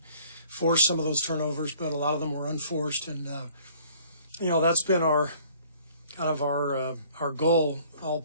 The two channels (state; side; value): inverted; both; correlation -0.56